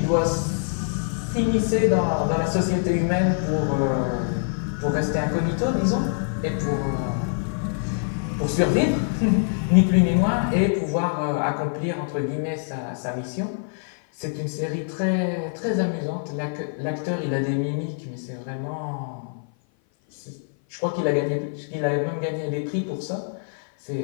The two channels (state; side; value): silent; right; 56 dB below the other